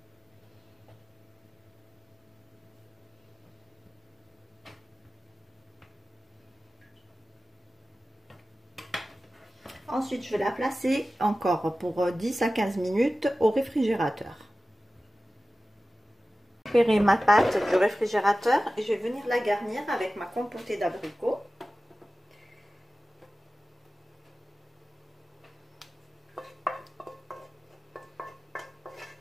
Ensuite, je vais la placer encore pour 10 à 15 minutes au réfrigérateur. Je vais récupérer ma pâte du réfrigérateur et je vais venir la garnir avec ma compotée d'abricots.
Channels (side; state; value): both; normal; correlation 0.95